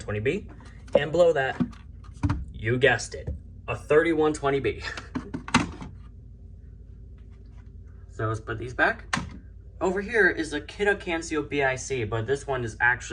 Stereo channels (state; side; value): identical; both; correlation 1.00